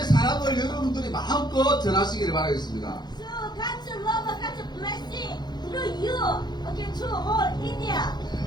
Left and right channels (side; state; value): right; late; 0.21 ms